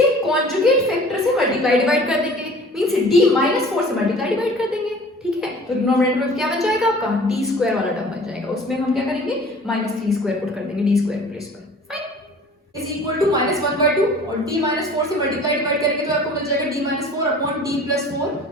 कॉन्जुगेट फैक्टर से मल्टीप्लाई डिवाइड कर देंगे, मींस d माइनस 4 से मल्टीप्लाई डिवाइड कर देंगे, ठीक है। तो डिनोमिनेटर में क्या बन जाएगा आपका, d स्क्वायर वाला टर्म बन जाएगा, उसमें हम क्या करेंगे, माइनस 3 स्क्वायर पुट कर देंगे d स्क्वायर प्लेस पर। Fine, is equal to minus 1/2 और d माइनस 4 से मल्टीप्लाई डिवाइड करेंगे तो आपको मिल जाएगा d minus 4 upon d plus 4,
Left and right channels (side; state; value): both; normal; correlation 0.46